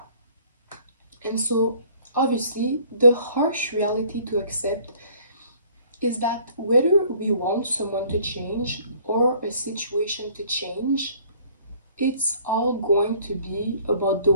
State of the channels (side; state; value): both; inverted; correlation -0.56